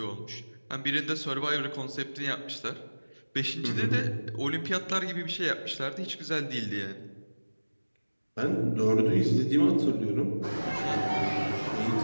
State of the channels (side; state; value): both; inverted; correlation -1.00